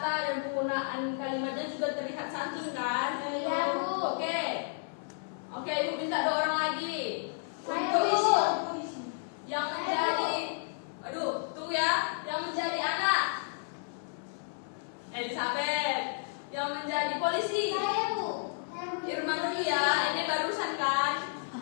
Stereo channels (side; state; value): right; silent; 57 dB below the other